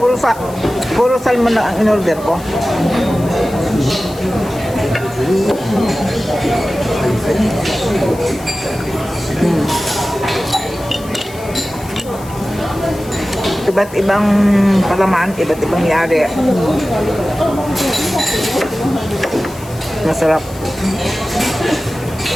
puro salmon na ang in-order ko. Iba't ibang palaman, iba't ibang yari. Masarap.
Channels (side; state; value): left; noise; hiss, 19 dB below the sound